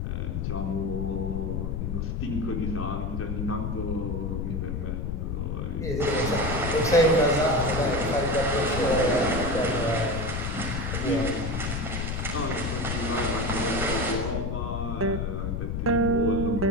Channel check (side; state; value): left; noise; rumble, 2 dB below the sound